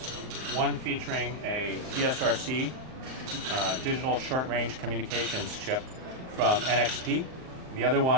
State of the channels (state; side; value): late; left; 38 ms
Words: one featuring a DSRC, digital short-range communications chip from NXP. The other